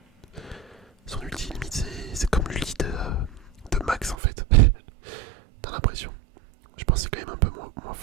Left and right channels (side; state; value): left; drops out; at 4.2 s